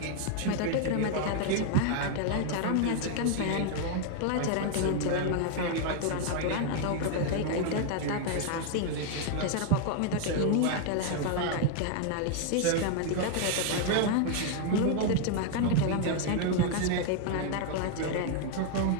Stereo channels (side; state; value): both; different; correlation 0.00